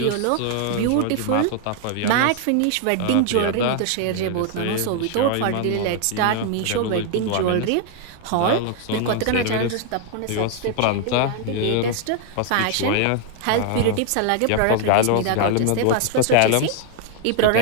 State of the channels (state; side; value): different; both; correlation 0.00